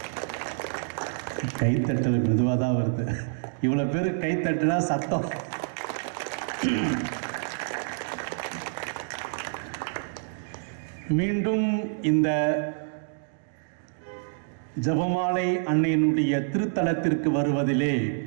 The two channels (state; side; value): silent; left; digital silence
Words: கைத்தட்டல் மெதுவாக தான் வருது. இவ்வளோ பேர் கைத்தட்டுனா சத்தம். மீண்டும் இந்த ஜபமாலை அன்னையினுடைய திருத்தலத்திற்கு வருவதிலே